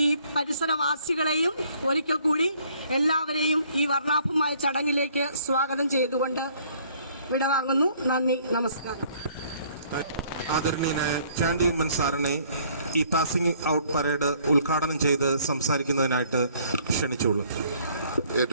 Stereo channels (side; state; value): both; inverted; correlation -0.61